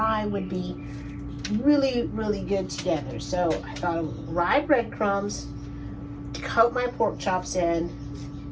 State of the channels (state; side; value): identical; both; correlation 1.00